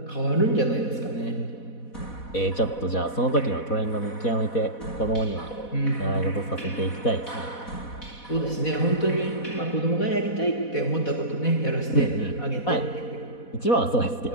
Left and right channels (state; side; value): late; right; 4.1 ms